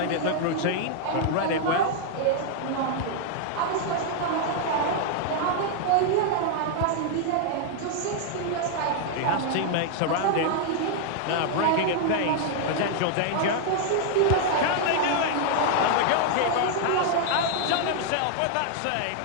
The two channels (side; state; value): both; different; correlation 0.00